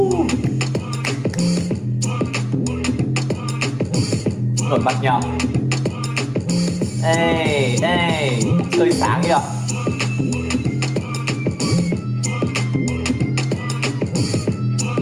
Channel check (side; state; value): both; identical; correlation 1.00